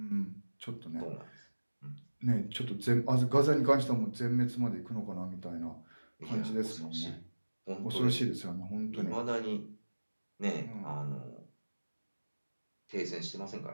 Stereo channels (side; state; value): both; inverted; correlation -1.00